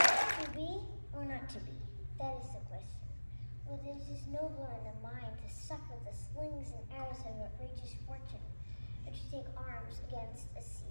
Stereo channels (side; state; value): both; inverted; correlation -1.00